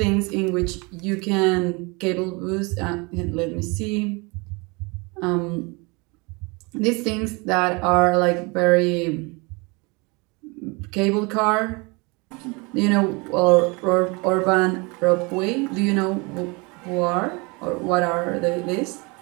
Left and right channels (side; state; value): left; quieter; 28.2 dB